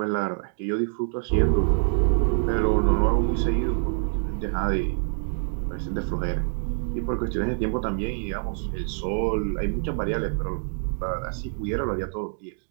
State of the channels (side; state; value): left; silent; digital silence